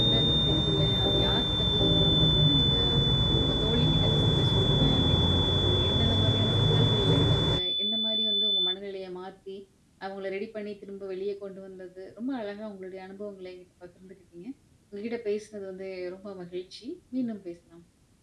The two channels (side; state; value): both; identical; correlation 1.00